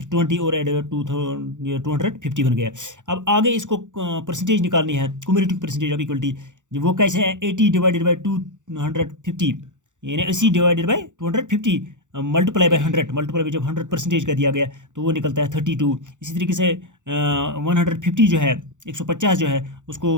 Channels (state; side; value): late; left; 0.86 ms